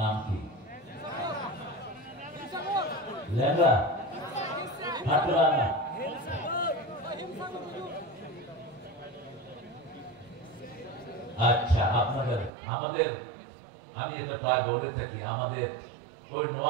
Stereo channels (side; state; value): left; drops out; at 12.5 s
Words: কি? লেঙ্গা, কাটরানা। আচ্ছা, আপনাদের আমাদের আমি এটা প্রায় বলে থাকি, আমাদের ওই